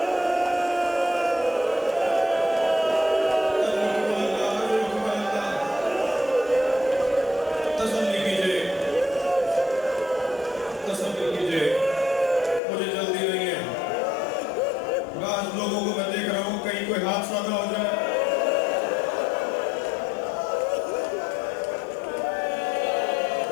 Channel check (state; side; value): drops out; right; at 12.6 s